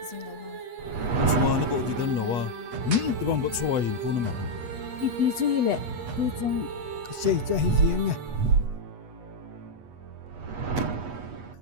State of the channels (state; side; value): late; left; 8.2 ms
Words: jing lo ha xóa nó bộ thì đơn lâu à thì bằng bớt xóa HINKHO nó mà ipi chu hi le tu chung Kasi cho hi hieng nha.